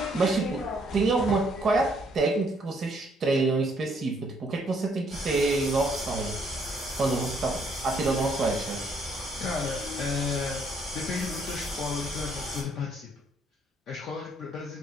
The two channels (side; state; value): both; normal; correlation 0.68